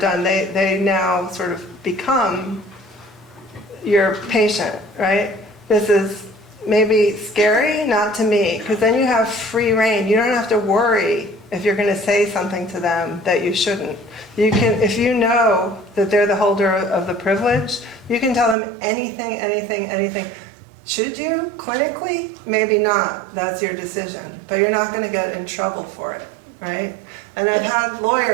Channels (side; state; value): left; drops out; at 18.6 s